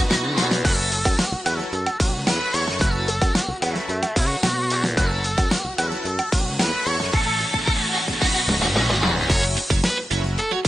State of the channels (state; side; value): normal; both; correlation 0.93